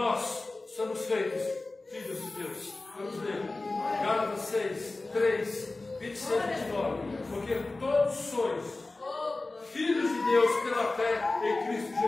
somos feitos filhos de Deus. Vamos ler. Gálatas 6, 3, 26 e 29. Porque todos sois filhos de Deus pela fé em Cristo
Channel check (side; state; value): right; quieter; 3.2 dB